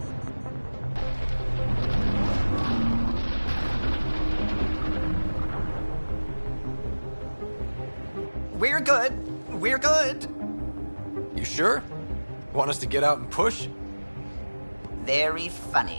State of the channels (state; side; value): inverted; both; correlation -1.00